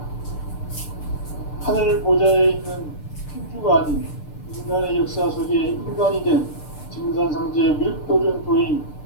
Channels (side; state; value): right; late; 6.7 ms